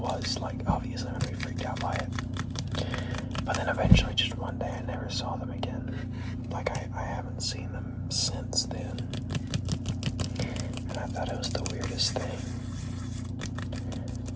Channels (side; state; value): both; identical; correlation 1.00